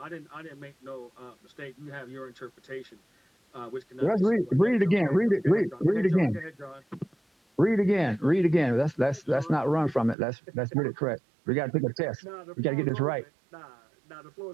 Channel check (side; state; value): left; drops out; at 10.2 s